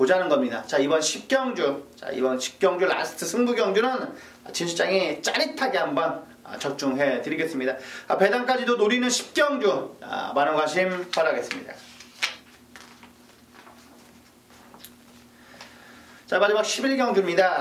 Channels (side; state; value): both; identical; correlation 1.00